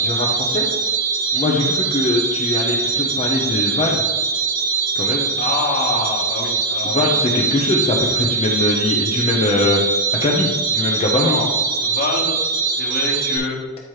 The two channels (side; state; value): both; normal; correlation -0.02